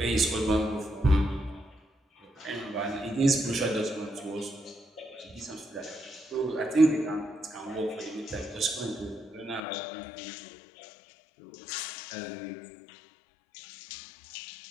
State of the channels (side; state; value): right; drops out; at 9.6 s